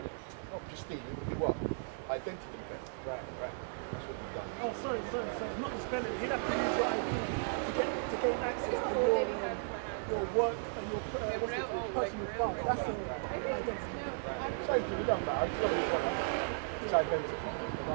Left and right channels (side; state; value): left; silent; digital silence